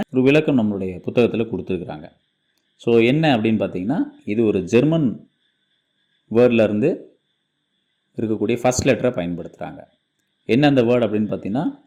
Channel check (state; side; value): identical; both; correlation 1.00